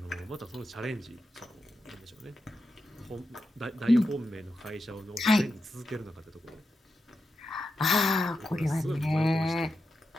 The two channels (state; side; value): normal; both; correlation 0.88